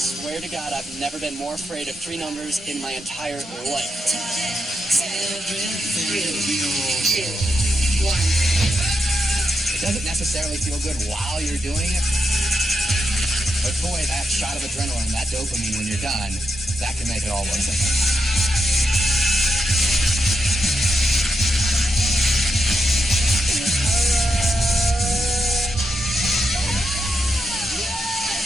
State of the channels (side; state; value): both; normal; correlation 0.85